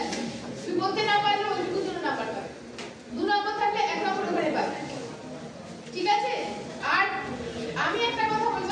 তুমি করতে না পারলে ওই সূত্র নাম্বার পাবে, 2 নম্বর থাকলে 1 নম্বর করে পাবে। ঠিক আছে? আর আমি একটা কথা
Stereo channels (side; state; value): both; identical; correlation 1.00